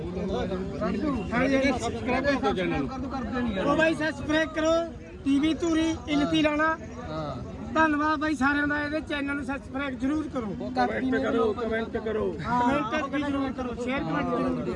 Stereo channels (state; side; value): identical; both; correlation 1.00